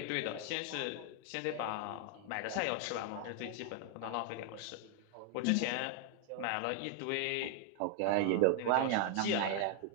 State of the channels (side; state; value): both; different; correlation 0.00